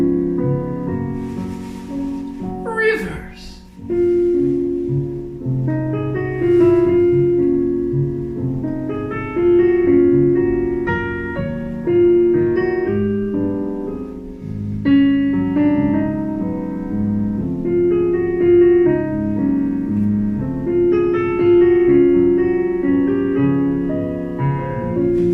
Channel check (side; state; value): both; identical; correlation 1.00